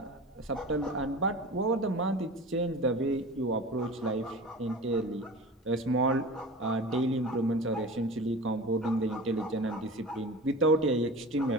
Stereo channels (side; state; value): both; normal; correlation 0.35